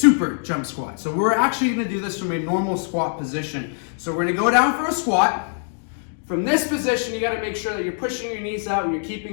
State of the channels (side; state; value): right; silent; 64 dB below the other